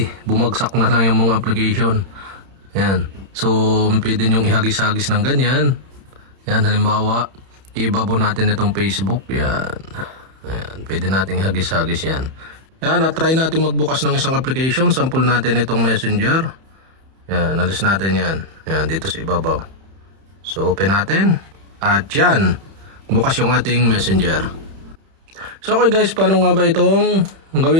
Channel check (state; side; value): late; left; 31 ms